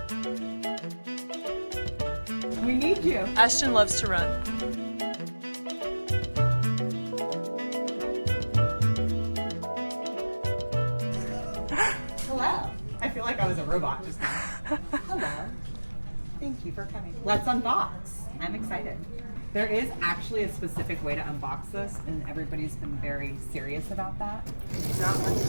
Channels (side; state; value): both; inverted; correlation -1.00